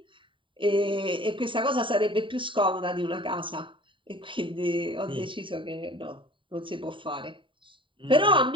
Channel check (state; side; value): late; left; 0.25 ms